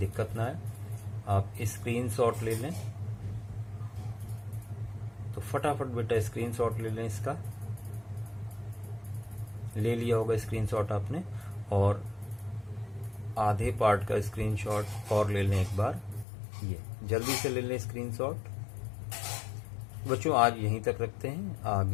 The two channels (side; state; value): right; drops out; at 16.2 s